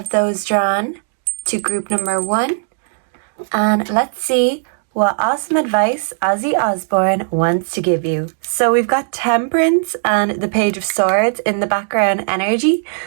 those drawn to group number 1 and let's see what awesome advice Ozzy Osbourne wants to give you. So we've got Temperance and the Page of Swords in the background energy.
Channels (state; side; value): silent; left; digital silence